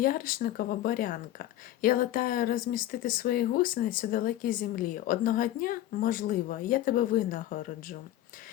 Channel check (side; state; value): right; quieter; 13.6 dB